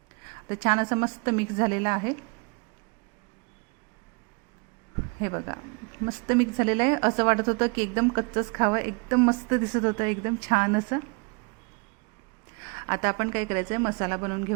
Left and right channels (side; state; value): left; quieter; 32.6 dB